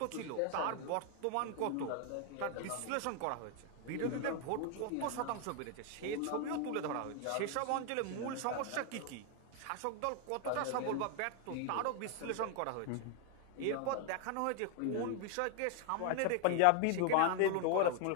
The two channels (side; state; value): both; different; correlation 0.00